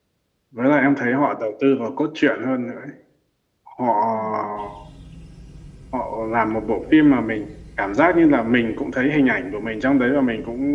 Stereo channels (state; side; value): identical; both; correlation 1.00